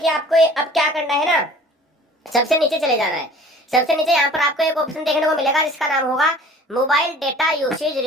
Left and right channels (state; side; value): normal; both; correlation 0.47